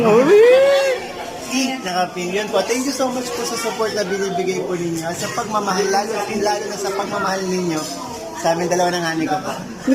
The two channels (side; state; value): both; identical; correlation 1.00